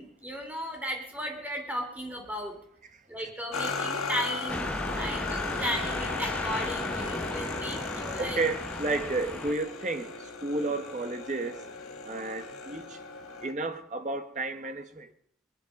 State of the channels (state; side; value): normal; both; correlation 0.41